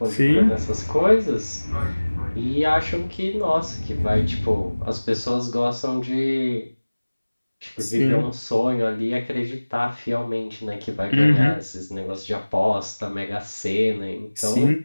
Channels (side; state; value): both; inverted; correlation -1.00